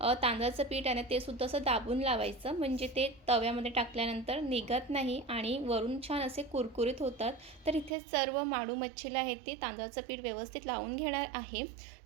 तांदळाचं पीठ आहे ना ते सुद्धा असं दाबून लावायचं, म्हणजे ते तव्यामध्ये टाकल्यानंतर निघत नाही आणि वरून छान असे कुरकुरीत होतात. तर इथे सर्व माडू मच्छीला आहे ते तांदळाचं पीठ व्यवस्थित लावून घेणार आहे.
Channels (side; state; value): left; drops out; at 7.9 s